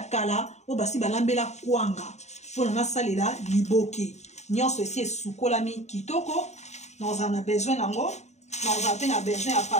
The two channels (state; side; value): late; right; 0.33 ms